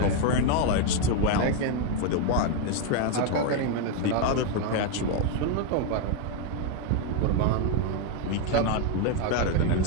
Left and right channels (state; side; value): different; both; correlation 0.01